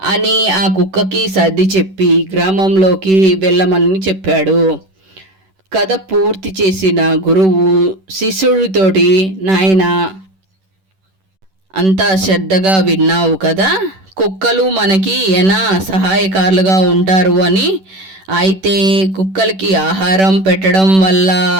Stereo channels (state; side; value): late; left; 11 ms